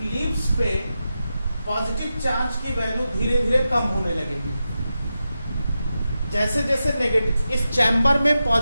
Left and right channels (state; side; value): inverted; both; correlation -0.90